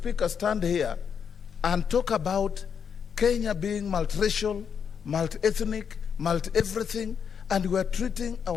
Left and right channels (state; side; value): quieter; right; 7.1 dB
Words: stand here and talk about Kenya being multiracial, multi-ethnic, multi-everything, and we are treating